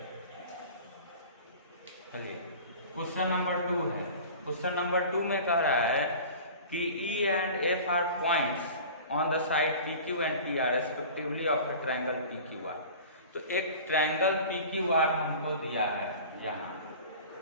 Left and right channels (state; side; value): inverted; both; correlation -0.40